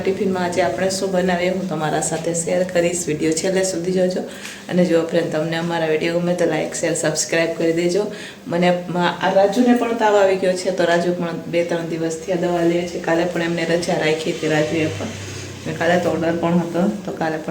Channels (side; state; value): both; identical; correlation 1.00